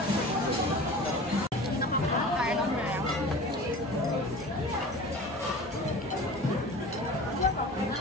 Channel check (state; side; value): normal; both; correlation 0.38